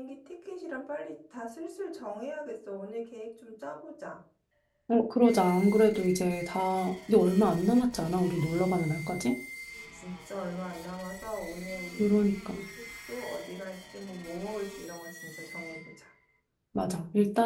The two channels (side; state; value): both; identical; correlation 1.00